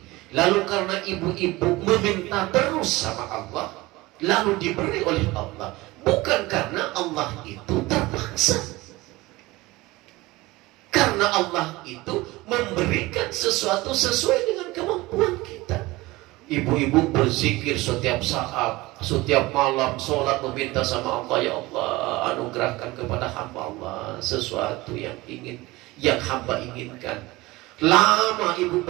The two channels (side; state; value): left; quieter; 20.6 dB